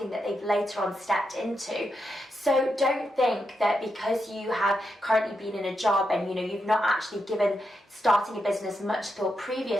that they've later on stepped into. So don't think that because you have currently been in a job and you've not actually given starting a business much thought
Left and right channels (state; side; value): normal; both; correlation 0.85